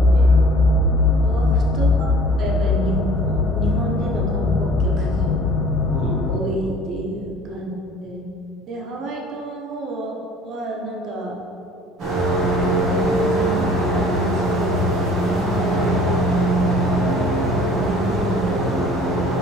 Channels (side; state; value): both; normal; correlation 0.50